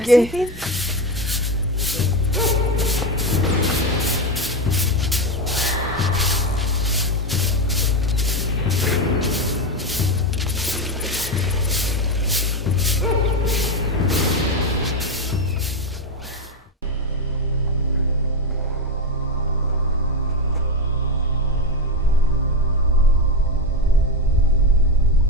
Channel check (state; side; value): normal; both; correlation 0.13